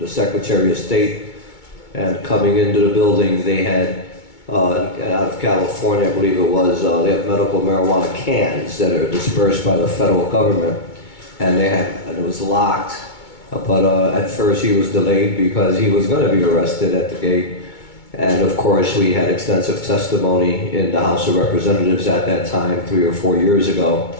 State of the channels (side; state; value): right; late; 2.2 ms